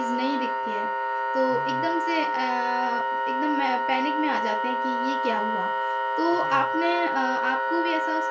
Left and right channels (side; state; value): both; identical; correlation 1.00